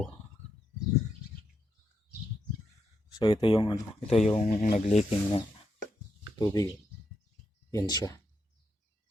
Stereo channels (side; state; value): both; normal; correlation 0.81